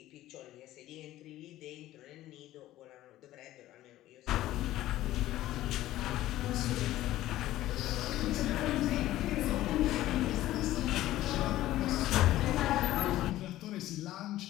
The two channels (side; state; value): right; quieter; 14.9 dB